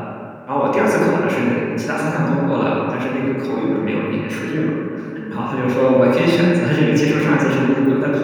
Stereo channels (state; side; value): identical; both; correlation 1.00